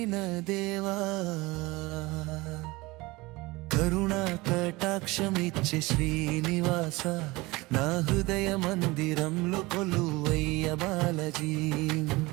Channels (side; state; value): left; quieter; 22.1 dB